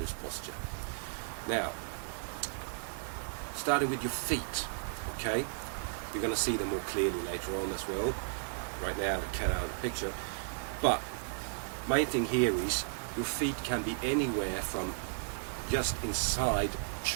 posture. Now, starting with your feet, okay? You're going to see them more clearly later on as well. Right now, they can't out of the picture. But main thing here is your feet can be anywhere from just inside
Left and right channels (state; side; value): silent; left; digital silence